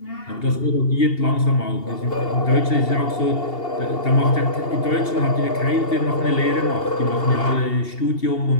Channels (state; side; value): late; right; 2.8 ms